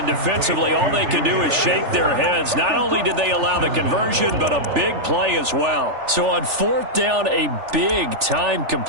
defensively all they can do is shake their heads. Not only did they allow the conversion, but a big play as well. So on 4th down, a big time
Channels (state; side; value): late; left; 3.4 ms